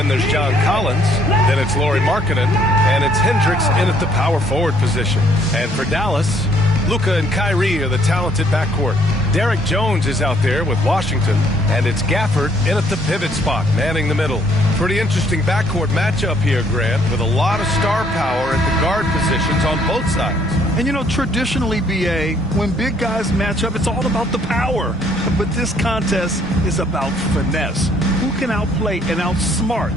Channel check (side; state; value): both; normal; correlation 0.65